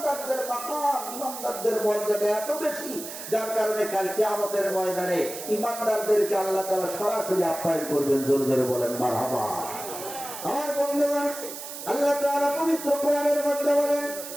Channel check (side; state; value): right; noise; hiss, 10 dB below the sound